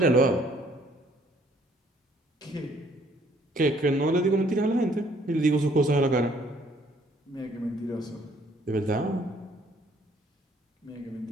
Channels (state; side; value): normal; both; correlation 0.63